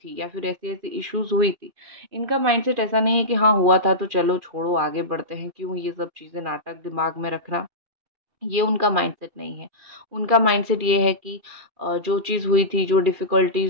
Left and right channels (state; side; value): late; left; 2.4 ms